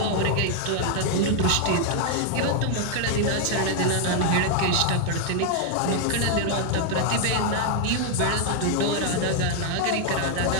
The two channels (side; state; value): both; different; correlation 0.00